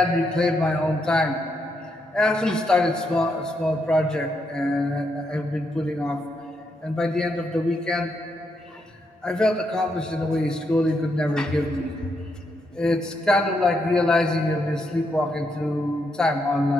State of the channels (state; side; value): normal; both; correlation 0.79